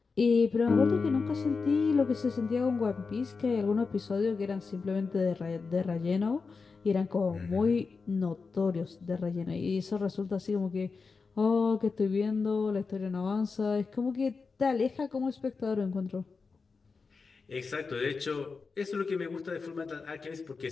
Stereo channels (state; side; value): quieter; right; 4.7 dB